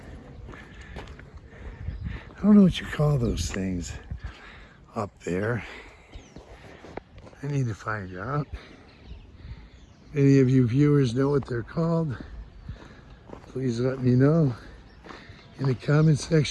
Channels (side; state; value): both; identical; correlation 1.00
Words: I don't know what you call those things up there. I need to find out. Any of you viewers know what they're called? Please let me know in the comment